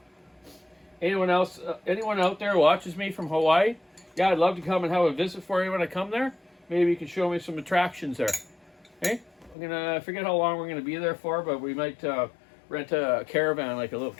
Anyone else? Anyone out there watches me from Hawaii? Yeah, I'd love to come and have a visit for you when I come there. Maybe you can show me some attractions there. Hey, I forget how long we're gonna be there for, but we might rent a caravan, like a little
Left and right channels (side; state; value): right; drops out; at 9.6 s